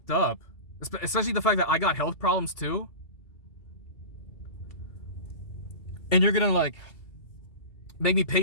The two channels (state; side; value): late; right; 2.3 ms